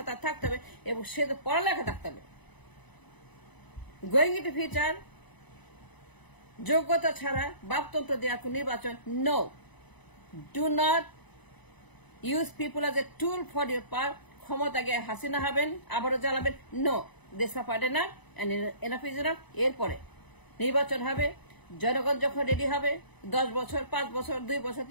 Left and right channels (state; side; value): late; right; 1.0 ms